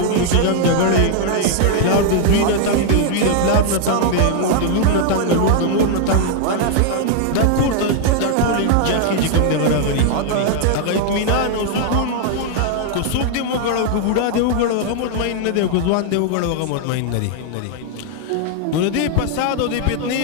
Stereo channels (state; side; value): different; both; correlation 0.00